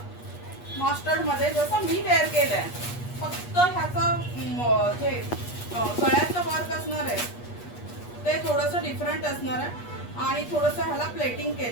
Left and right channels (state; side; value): late; right; 8.3 ms